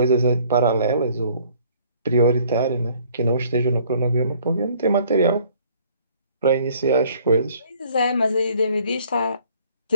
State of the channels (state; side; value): inverted; both; correlation -0.59